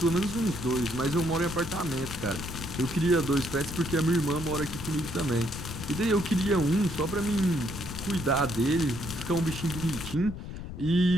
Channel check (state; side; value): noise; left; rumble, 9 dB below the sound